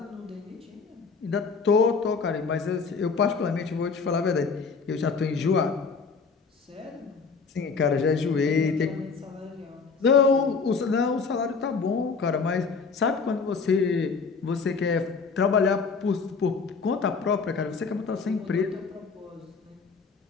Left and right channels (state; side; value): quieter; right; 5.0 dB